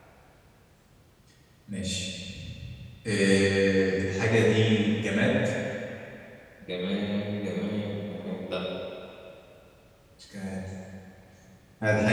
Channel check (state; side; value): identical; both; correlation 1.00